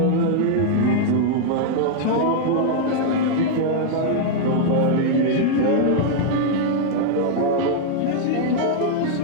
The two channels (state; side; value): different; both; correlation -0.01